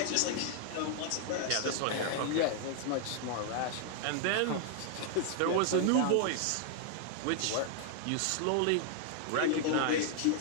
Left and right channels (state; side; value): different; both; correlation 0.00